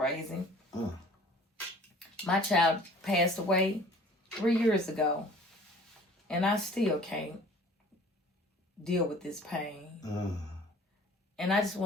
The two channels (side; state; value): both; normal; correlation 0.49